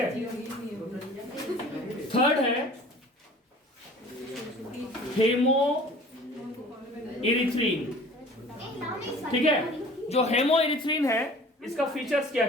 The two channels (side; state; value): both; normal; correlation 0.46